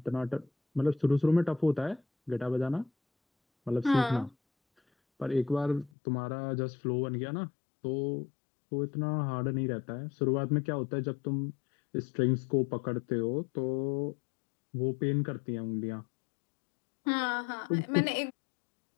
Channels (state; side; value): drops out; right; at 5.9 s